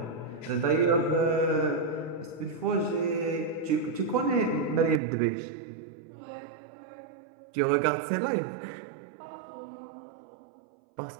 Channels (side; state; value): left; drops out; at 5.0 s